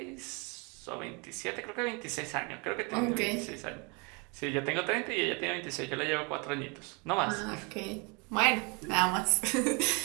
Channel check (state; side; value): quieter; left; 31.4 dB